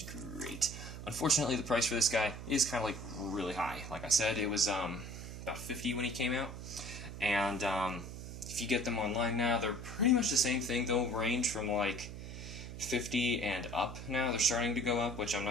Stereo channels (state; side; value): noise; right; hum, 10 dB below the sound